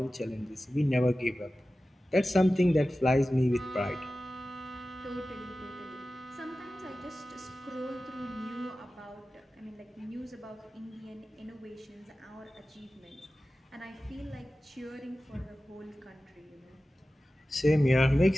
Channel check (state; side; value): normal; both; correlation 0.95